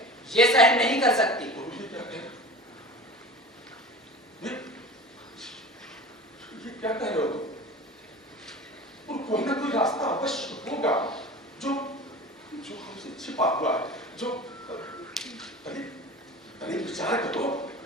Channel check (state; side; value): normal; both; correlation 0.35